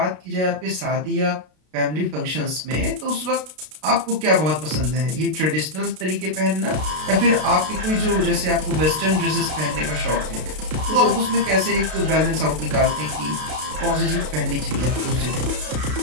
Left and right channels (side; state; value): left; late; 32 ms